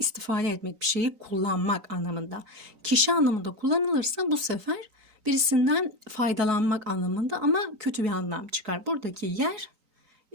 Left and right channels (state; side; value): late; left; 3.9 ms